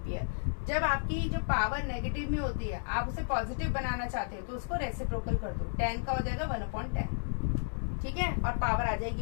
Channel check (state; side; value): silent; right; digital silence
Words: जब आपकी जो पावर नेगेटिव में होती है, आप उसे पॉजिटिव बनाना चाहते हो तो उसको रेसिप्रोकल कर दो, 10 का हो जाएगा 1/10, ठीक है, और पावर आ